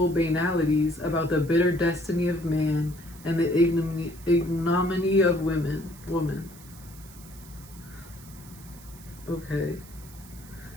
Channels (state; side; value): noise; right; hiss, 20 dB below the sound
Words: banalities about the bitter destiny of man and the ignominy of woman. Okay.